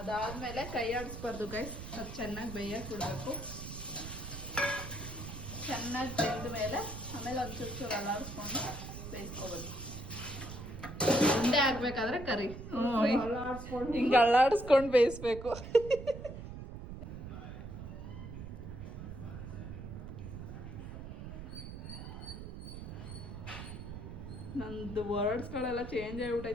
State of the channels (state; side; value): noise; right; rumble, 9 dB below the sound